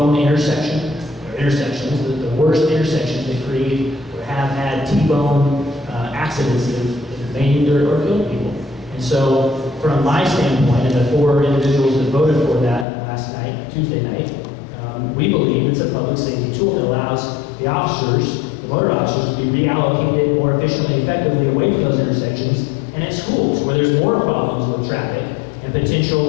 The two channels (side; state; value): right; drops out; at 12.9 s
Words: intersections, the worst intersections that create or have had T-bone accidents that have maimed or killed people. And so, from my standpoint, and the 4 individuals that voted for that last night, Tuesday night, we believe it's a public safety tool that allows the officers, the motor officers, to be reallocated more efficiently and effectively away from those intersections and at schools where there's more problems with traffic and